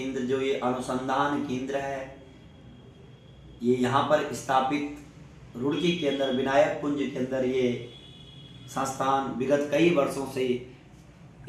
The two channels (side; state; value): both; identical; correlation 1.00